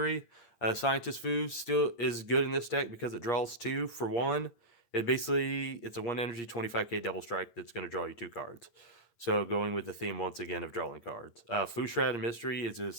Scientist Fu still is good in this deck because it draws 2 for 1. It's a 1 energy 25k double strike that's going to draw you 2 cards. So going with the theme once again of drawing cards. Fu Shrouded Mystery is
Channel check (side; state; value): right; late; 8.5 ms